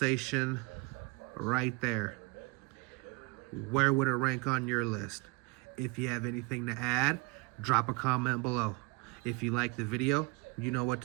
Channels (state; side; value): quieter; left; 26.6 dB